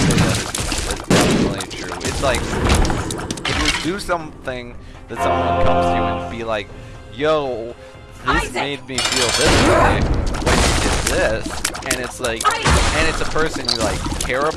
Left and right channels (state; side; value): identical; both; correlation 1.00